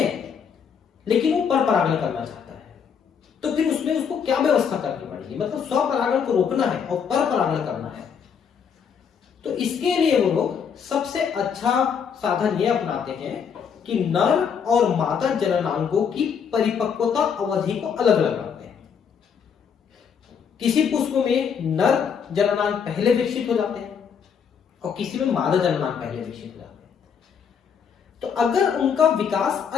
लेकिन वो परपरागण करना चाहता है, तो फिर उसमें उसको क्या व्यवस्था करनी पड़ेगी? मतलब स्वपरागण को रोकना है और परपरागण करना है। तो इसके लिए वो लोग सबसे अच्छा साधन ये अपनाते हैं कि नर और मादा जननांगों की परिपक्वता अवधि को अलग अलग रखते हैं। किसी पुष्प में नर जननांग पहले विकसित हो जाते हैं और किसी में मादा जननांग पहले विकसित हो जाते हैं। तो अगर उनका विकास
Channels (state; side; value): quieter; right; 7.0 dB